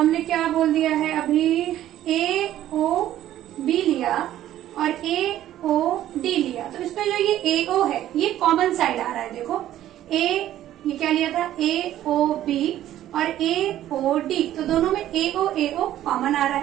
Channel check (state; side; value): quieter; left; 12.8 dB